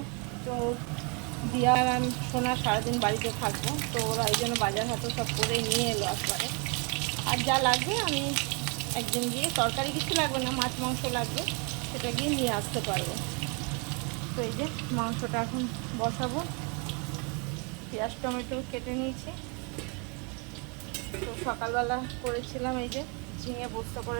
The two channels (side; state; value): left; quieter; 33.9 dB